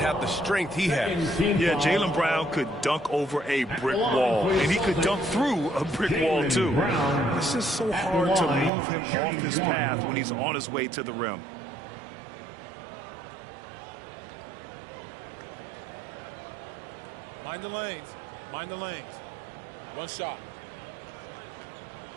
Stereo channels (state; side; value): drops out; left; at 8.7 s